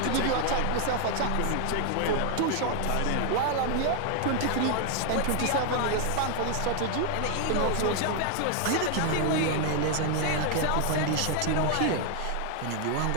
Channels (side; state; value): both; different; correlation 0.00